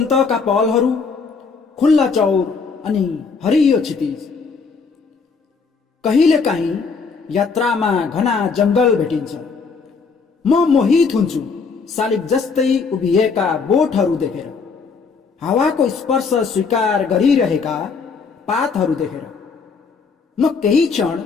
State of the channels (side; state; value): right; quieter; 5.0 dB